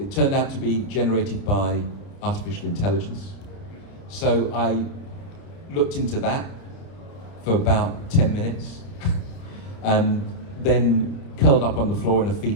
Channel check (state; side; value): late; right; 30 ms